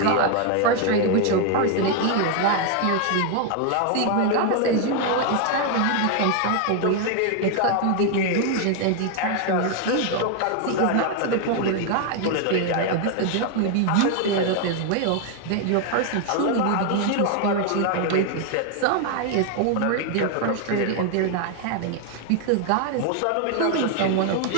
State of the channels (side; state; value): both; different; correlation 0.00